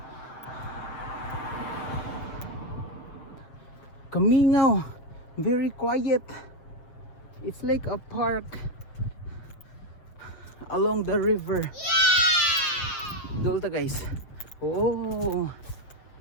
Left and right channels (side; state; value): right; late; 7.4 ms